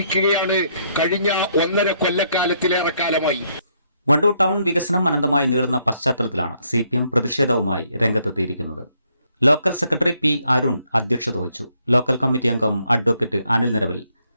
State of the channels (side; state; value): both; inverted; correlation -0.72